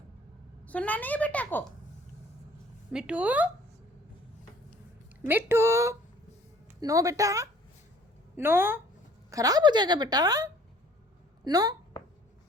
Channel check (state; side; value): normal; both; correlation 0.55